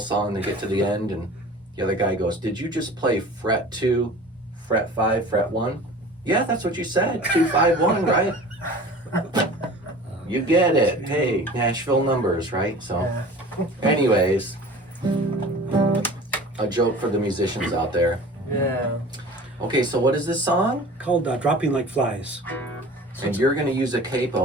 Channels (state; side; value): normal; both; correlation 0.41